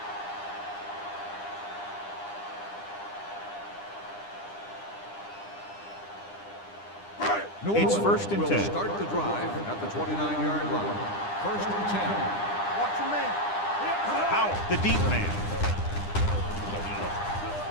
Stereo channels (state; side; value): late; right; 9.9 ms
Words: It's first and 10. Start the drive at the 29-yard line. First and 10. Watch your man. Powell, the deep man.